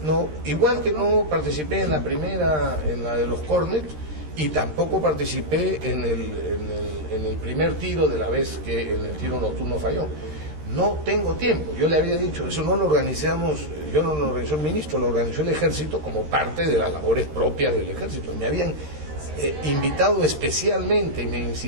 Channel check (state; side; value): late; left; 13 ms